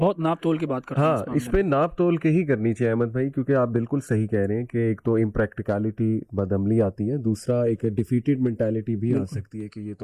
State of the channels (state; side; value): identical; both; correlation 1.00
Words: ناپ تول کے بات کرتا ہوں. ہاں اس پہ ناپ تول کے ہی کرنی چاہیے احمد بھائی, کیونکہ آپ بالکل صحیح کہہ رہے ہیں کہ ایک تو امپریکٹیکلٹی بدعملی آتی ہے, دوسرا ایک ڈیفیٹڈ مینٹیلٹی بھی آ سکتی ہے کہ یہ